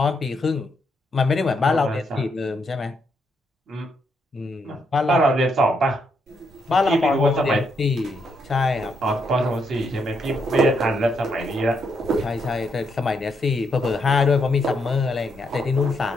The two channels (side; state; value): both; normal; correlation 0.77